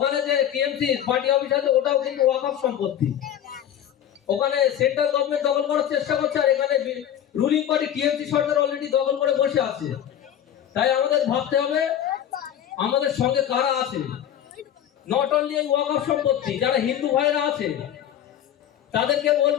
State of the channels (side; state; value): right; quieter; 10.4 dB